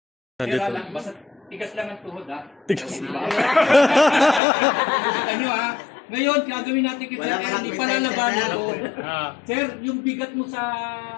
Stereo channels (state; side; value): drops out; right; at 4.4 s